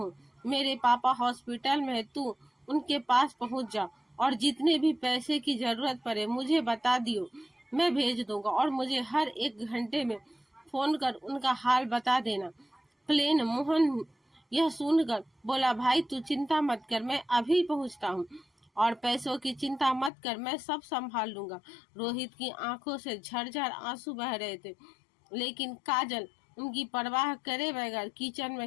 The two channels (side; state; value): right; drops out; at 20.1 s